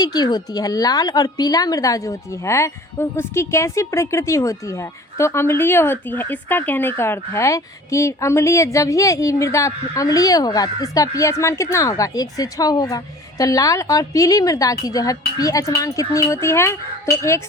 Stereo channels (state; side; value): normal; both; correlation 0.45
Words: की होती है। लाल और पीला मृदा जो होती है उसकी कैसी प्रकृति होती है? तो अम्लीय होती है। इसका कहने का अर्थ है कि अम्लीय, जब ये मृदा अम्लीय होगा तो इसका पीएच मान कितना होगा? 1 से 6 होगा। तो लाल और पीली मृदा की जो है पीएच मान कितनी होती है? तो 1